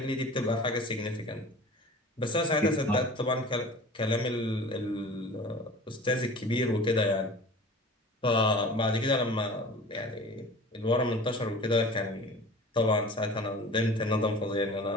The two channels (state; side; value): normal; both; correlation 0.41